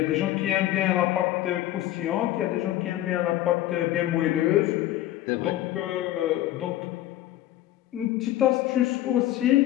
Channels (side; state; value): right; quieter; 14.2 dB